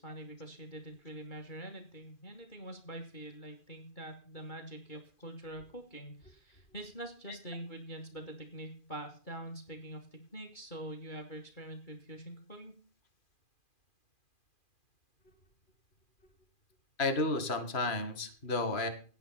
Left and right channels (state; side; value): late; right; 2.4 ms